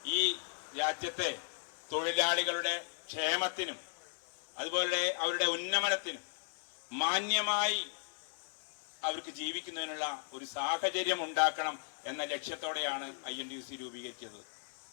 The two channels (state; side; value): silent; right; 54 dB below the other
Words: ഈ രാജ്യത്തെ തൊഴിലാളികളുടെ ക്ഷേമത്തിനും അതുപോലെ അവരുടെ ഉന്നമനത്തിനും മാന്യമായി അവർക്ക് ജീവിക്കുന്നതിനുള്ള ഒരു സാഹചര്യം ഉണ്ടാക്കണം എന്ന ലക്ഷ്യത്തോടെയാണ് INTUC രൂപീകരിച്ചത്.